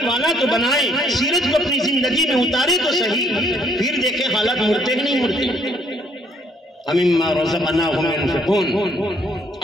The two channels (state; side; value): normal; both; correlation 0.66